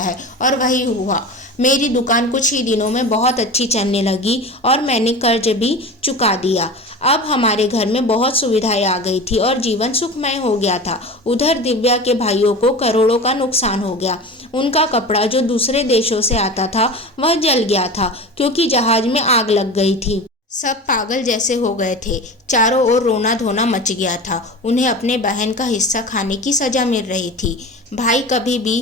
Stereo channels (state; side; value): normal; both; correlation 0.32